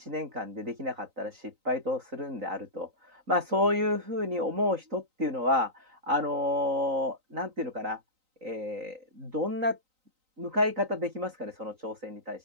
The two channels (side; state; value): left; late; 3.9 ms